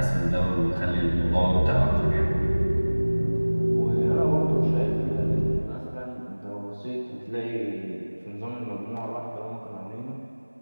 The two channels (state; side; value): inverted; both; correlation -1.00